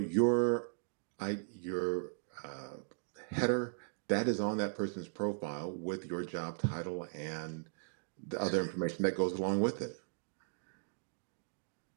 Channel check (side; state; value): left; silent; digital silence